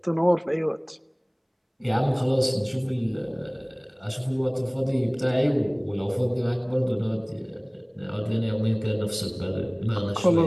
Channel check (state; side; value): identical; both; correlation 1.00